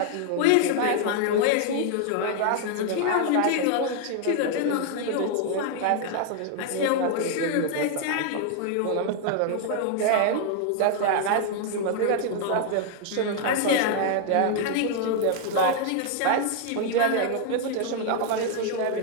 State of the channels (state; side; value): different; both; correlation 0.00